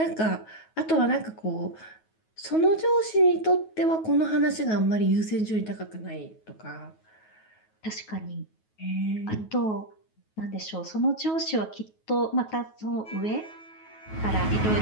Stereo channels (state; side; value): late; right; 9.3 ms